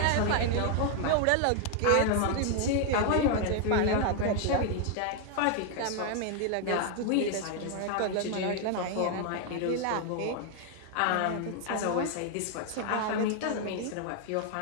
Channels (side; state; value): both; different; correlation 0.00